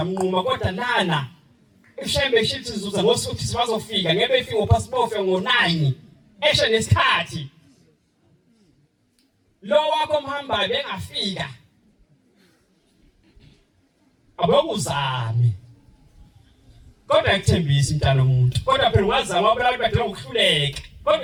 umnquma kodwa lana Ishembe shithi sizuza ngosuthi sibazofika ngeke befike ngopassport ngo9 eshe nesikhathi lo wakho mhamba bengafika abokuzame kodwa ekuthembisa intana umuntu kodwa phela wazama abantu badela ukuhluleka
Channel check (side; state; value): both; identical; correlation 1.00